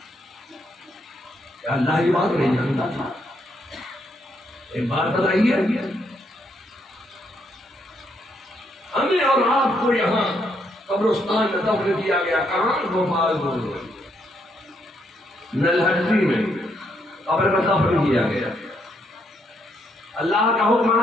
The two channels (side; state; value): both; normal; correlation 0.75